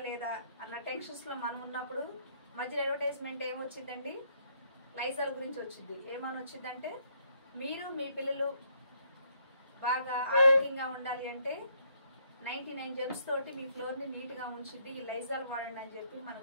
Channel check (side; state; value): both; inverted; correlation -0.69